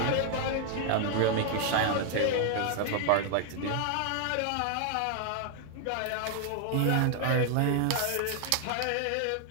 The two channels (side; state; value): both; different; correlation 0.00